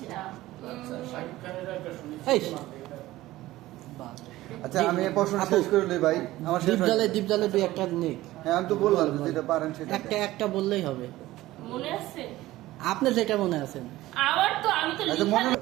না। আচ্ছা আমি প্রশ্ন শেষ করে লই ভাই, আমার দীপজলে দুই একটা নেই। হ্যাঁ আমি তো বললাম যেটা পারেন সেটা একটা বললেই হবে। মনে আছে আপনার যেটা মনে আছে? আমার তো আমি তো আচ্ছা মনে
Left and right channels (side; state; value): left; quieter; 16.7 dB